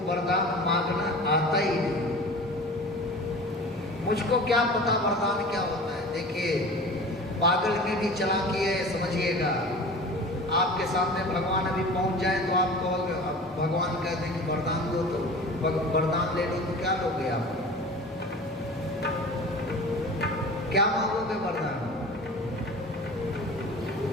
वरदान मांगना आता ही नहीं, मुझको क्या पता वरदान क्या होता है। देखिए पागल में भी चालाकी है, समझिएगा। आपके सामने भगवान अभी पहुंच जाए तो आप कहोगे, भगवान कहते हैं कि वरदान दो, तो वरदान ले लो, तो क्या लोगे आप? क्या मांगोगे वरदान?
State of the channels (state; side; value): normal; both; correlation 0.38